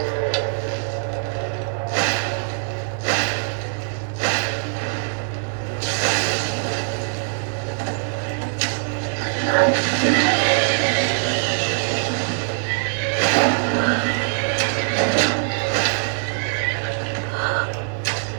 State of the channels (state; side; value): silent; left; digital silence